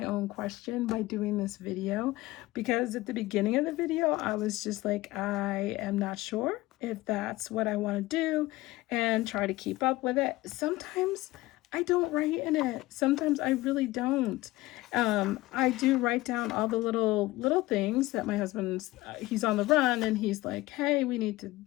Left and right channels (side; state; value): right; quieter; 18.8 dB